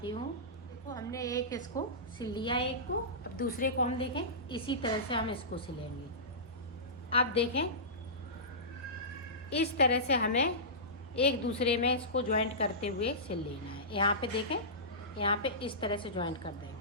हूँ। देखो हमने एक इसको सिल लिया, एक को। अब दूसरे को हम देखें, इसी तरह से हम इसको सिलेंगे। अब देखें, इस तरह से हमें एक दूसरे में इसको ज्वाइंट करते हुए सिल लेना है। यहाँ पे देखें, यहाँ पे इस तरह से ज्वाइंट कर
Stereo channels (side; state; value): both; normal; correlation -0.20